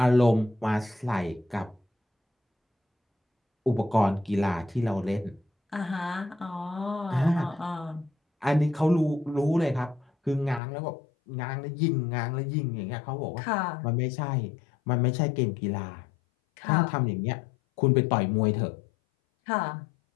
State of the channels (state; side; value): drops out; right; at 10.6 s